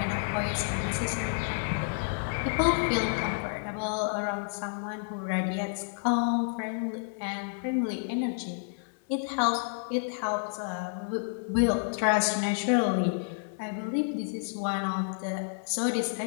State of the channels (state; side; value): silent; right; 57 dB below the other